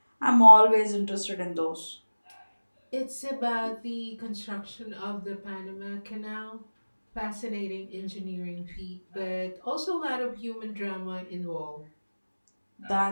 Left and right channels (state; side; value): inverted; both; correlation -1.00